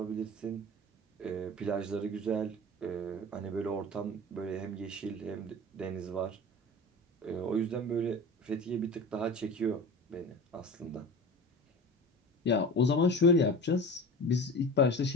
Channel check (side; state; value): both; normal; correlation 0.34